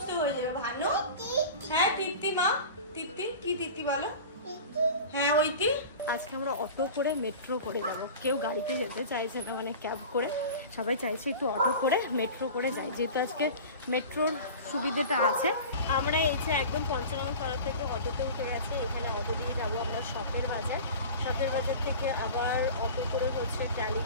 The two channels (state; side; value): inverted; both; correlation -0.36